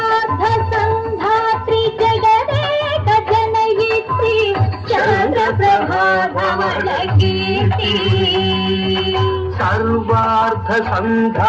संधात्री जगदेक जनयित्री चंद्रप्रभा धवल कीर्ति सर्वार्थ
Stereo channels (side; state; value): both; identical; correlation 1.00